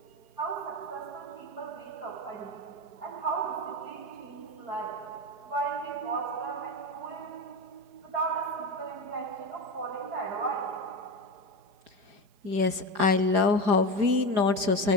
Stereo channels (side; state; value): left; late; 4.9 ms